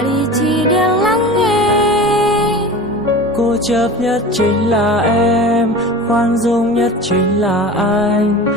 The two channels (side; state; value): both; normal; correlation 0.34